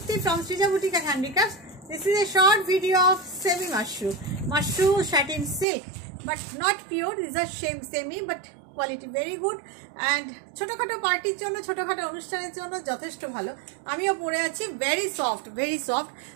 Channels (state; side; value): drops out; left; at 5.7 s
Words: from Srija Boutique and Handicrafts. This is a short video of semi mushroom satin silk, but not pure. These are semi, but quality very good. And ছোটখাটো পার্টির জন্য ছোটখাটো অনুষ্ঠানের জন্য যথেষ্ট ভালো। আমিও পরে আছি very soft